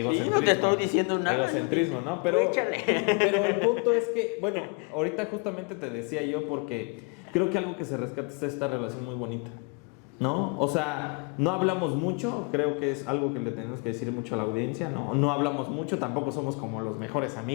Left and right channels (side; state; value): right; quieter; 33.4 dB